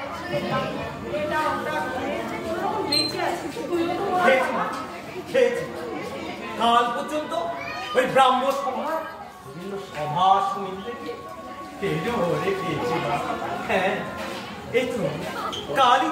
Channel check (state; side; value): identical; both; correlation 1.00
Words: এটা ওটা কোনোরকম বেঁচে আছে। তুইও তো খেয়েছি কাল পর্যন্ত ওই ব্রাহ্ম সভার বিভিন্ন সভা শুনতে গিয়ে খেয়েছি। হ্যাঁ, এই তো কালই